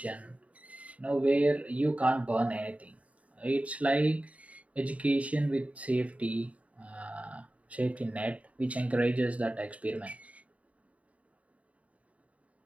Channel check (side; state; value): left; late; 0.067 ms